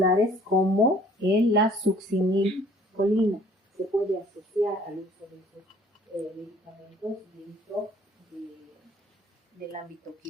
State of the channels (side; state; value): both; normal; correlation 0.55